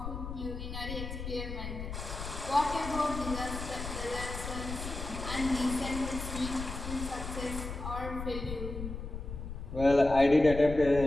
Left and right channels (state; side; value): noise; left; rumble, 7 dB below the sound